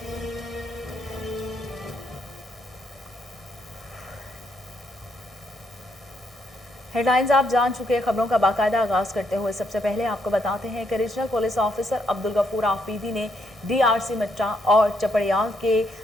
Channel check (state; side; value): normal; both; correlation 0.75